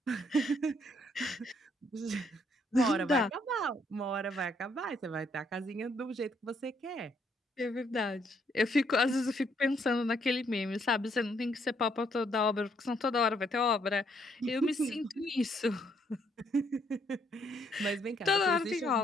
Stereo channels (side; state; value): both; normal; correlation 0.71